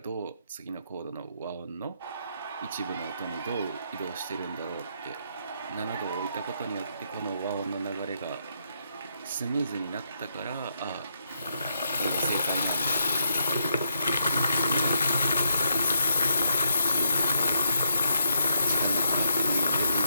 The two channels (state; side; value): inverted; both; correlation -0.78